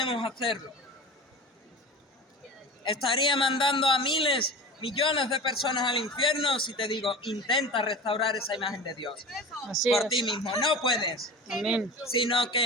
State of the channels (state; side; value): normal; both; correlation 0.33